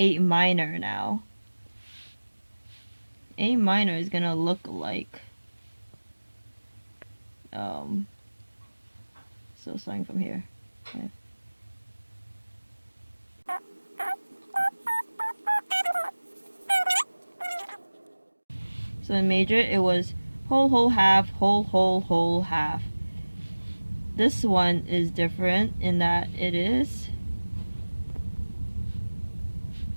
minor now. A minor is gonna look like, so starting from here. Okay. So in major, it was whole, whole, half, whole, whole, whole, half. This one is different in that it is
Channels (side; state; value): both; inverted; correlation -1.00